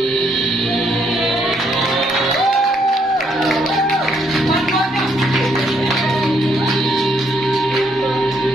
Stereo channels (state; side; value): normal; both; correlation 0.72